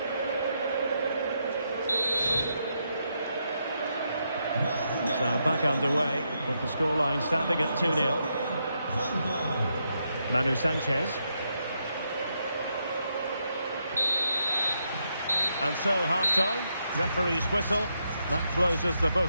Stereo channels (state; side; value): inverted; both; correlation -0.80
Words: So back underway, with the scoreline standing at 2-0. Manu Sanchez. And so, half-time, referee's whistle. That closes the